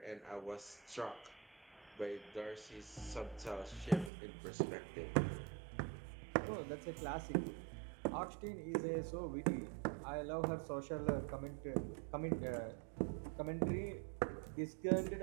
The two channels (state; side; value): drops out; left; at 4.1 s